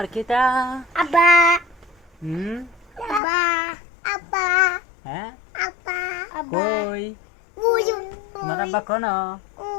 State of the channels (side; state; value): right; drops out; at 3.2 s